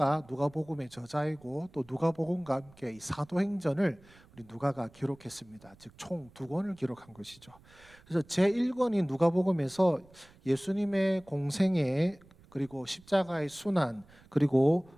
저자이고 또 누가복음과 함께 이 사도행전을 우리 누가가 기록했습니다. 즉 총 2권을 기록한 것이죠. 그래서 제1권인 누가복음에서 예수님의 공생애 그리고 십자가의 순환 그리고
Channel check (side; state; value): right; noise; rumble, 26 dB below the sound